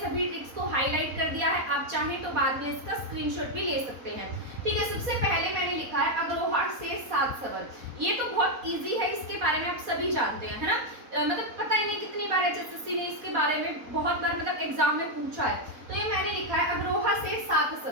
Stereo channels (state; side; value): late; left; 4.1 ms